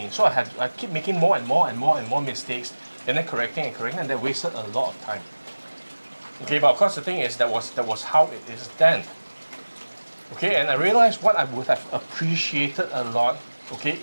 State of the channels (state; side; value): inverted; both; correlation -1.00